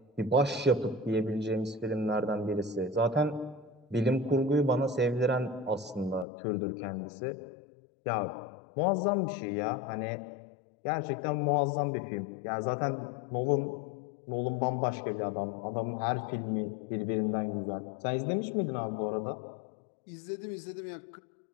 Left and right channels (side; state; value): right; drops out; at 6.2 s